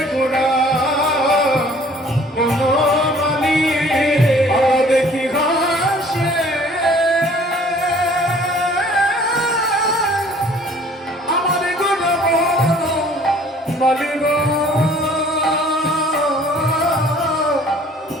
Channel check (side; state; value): both; normal; correlation 0.54